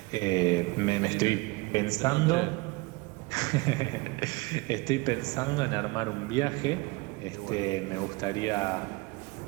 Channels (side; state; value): left; quieter; 24.6 dB